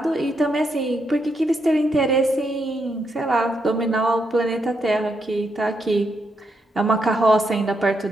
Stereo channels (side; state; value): both; normal; correlation 0.80